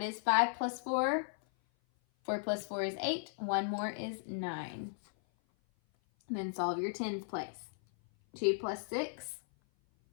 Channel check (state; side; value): silent; right; 54 dB below the other